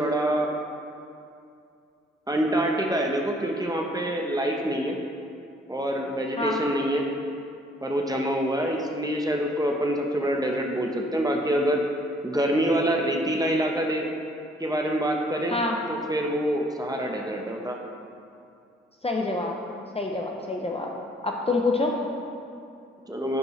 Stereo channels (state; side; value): normal; both; correlation 0.61